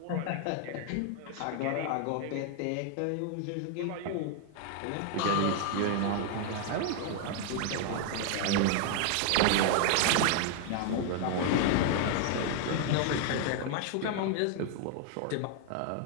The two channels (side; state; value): both; different; correlation 0.00